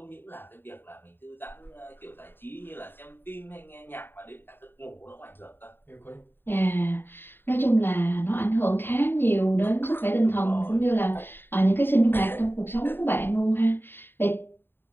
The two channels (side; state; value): right; late; 0.099 ms